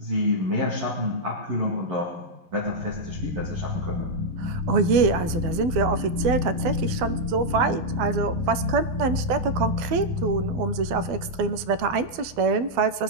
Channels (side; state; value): left; late; 12 ms